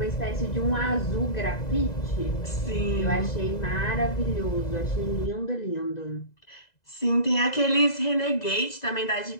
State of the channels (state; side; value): late; right; 2.0 ms